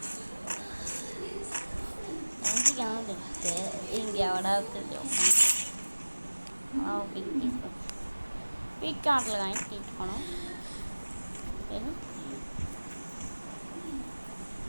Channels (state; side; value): inverted; both; correlation -1.00